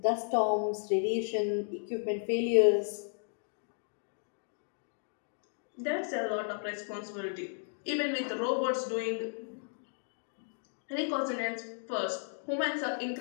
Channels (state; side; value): silent; right; digital silence